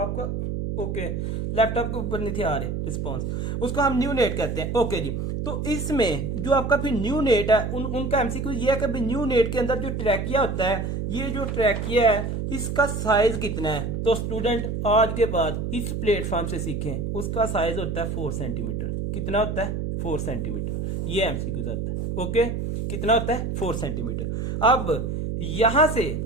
ओके, लैपटॉप के ऊपर नहीं थे आ रहे रिस्पॉन्स, उसको हम न्यू नेट कहते हैं। ओके जी, तो इसमें जो आपका फिर न्यू नेट है, उनका एमसीक्यू ये है कि न्यू नेट के अंदर जो ट्रैकिया होता है, ये जो ट्रैकिया है इसका साइज कितना है। तो स्टूडेंट आज के बाद इस प्लेटफॉर्म से सीखें, उसका साइज होता है 4 सेंटीमीटर। कितना होता है, 4 सेंटीमीटर, ये एमसीक्यू आता है। ओके, कितना होता है, 4 सेंटीमीटर। अब यहां से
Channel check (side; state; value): right; noise; hum, 2 dB below the sound